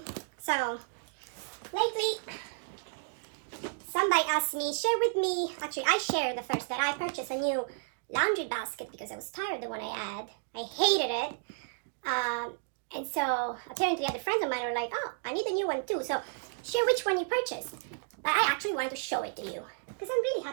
So lately somebody asked me, share with me, actually I shared the first that I purchased a new laundry basket because I was tired of the one I had. I hated it. And so apparently other friends of mine were like, oh, I need a new one too. So share which one you purchased. But I actually wanted to show it to you because I'm really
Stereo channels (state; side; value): silent; left; digital silence